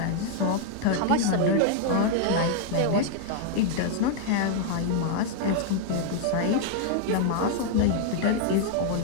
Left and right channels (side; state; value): both; different; correlation 0.00